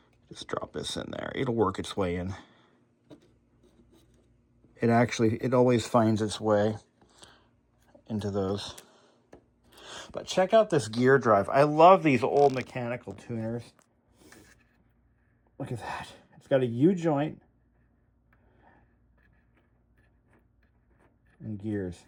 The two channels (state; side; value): identical; both; correlation 1.00